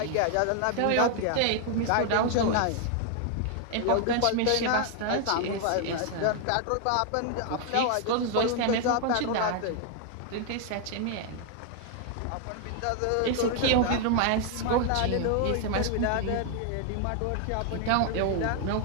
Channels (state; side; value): different; both; correlation 0.00